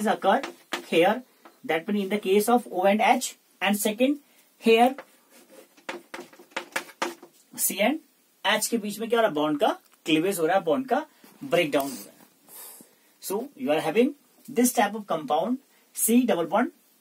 occurred here. That means in the case of O and H, and second here C and H के बीच में क्या हो रहा है? बॉन्ड का क्लीवेज हो रहा है, बॉन्ड का ब्रेक डाउन हो रहा है. So you are having this type of compound C double bond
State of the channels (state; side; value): identical; both; correlation 1.00